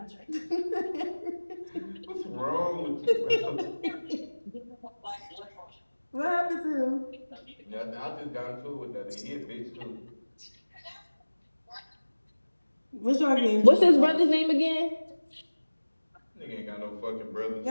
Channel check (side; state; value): both; inverted; correlation -1.00